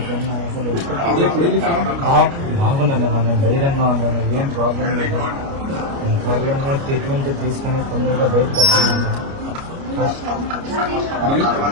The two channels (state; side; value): late; left; 29 ms